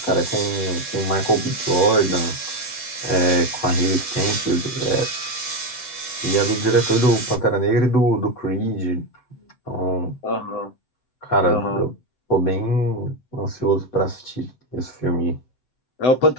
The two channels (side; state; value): right; late; 7.9 ms